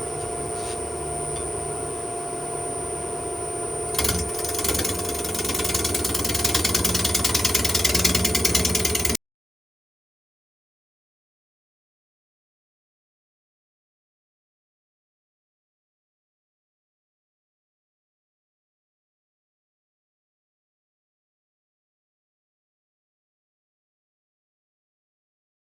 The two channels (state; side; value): normal; both; correlation 0.89